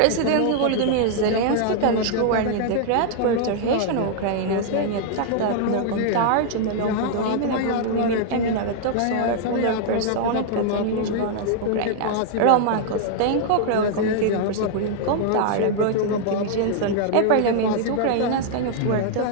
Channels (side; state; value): both; different; correlation -0.01